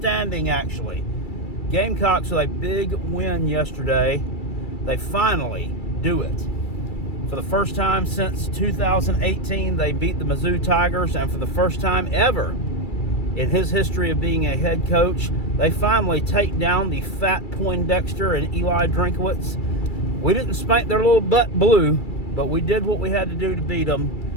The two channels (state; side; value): late; right; 2.3 ms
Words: actually. Gamecocks with a big win yesterday. They finally do it. For the first time since 2018, they beat the Mizzou Tigers, and for the first time ever in his history of being a head coach, they finally take down the fat Poindexter and Eli Drinkowitz. We didn't spank their little butt blue, but we did what we had to do to beat